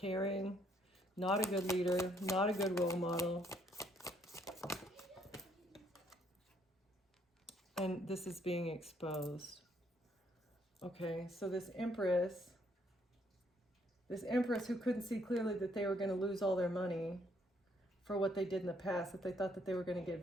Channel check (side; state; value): both; normal; correlation 0.68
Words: not a good leader, not a good role model. And this is being exposed. Okay, so this Empress who couldn't see clearly that they were going to lose all their money for what they did in the past, that they thought that they were going to